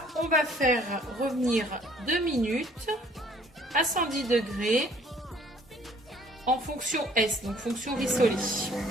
on va faire revenir 2 minutes à 110 degrés en fonction S, donc fonction Risoli.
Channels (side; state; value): both; normal; correlation 0.58